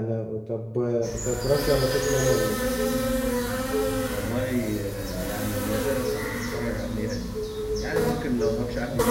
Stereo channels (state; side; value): identical; both; correlation 1.00